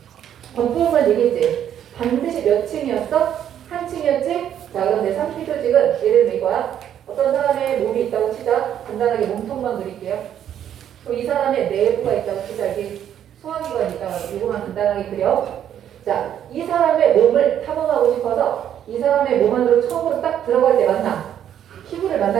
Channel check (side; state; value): left; quieter; 10.0 dB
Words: 겉부분만 얘기했지? 반드시 몇 층이었어? 한 층이었지? 자, 그럼 내 상피 조직은 예를 들면 이거야. 어떤 사람의 몸이 있다고 치자. 간단하게 몸통만 그릴게요. 그럼 이 사람의 내부가 있다고 치자. 이게 소화기관이 있다고 이거만 간단하게 그려. 자, 이 사람의 몸을 탐험하고 싶어서 이 사람의 몸 안으로 처음으로 딱 들어갈 때 만나. 피부를